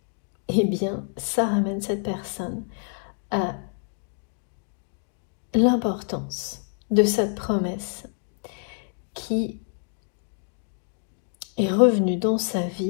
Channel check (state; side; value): silent; right; 60 dB below the other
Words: eh bien, ça ramène cette personne à l'importance de cette promesse qui est revenue dans sa